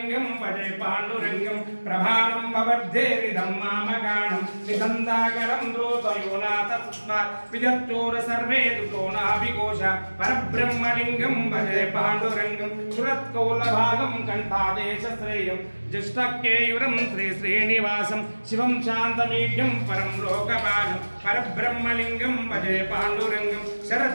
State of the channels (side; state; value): both; inverted; correlation -1.00